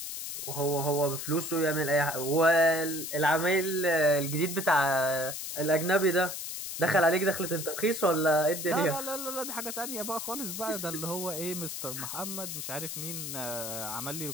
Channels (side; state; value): left; noise; hiss, 6 dB below the sound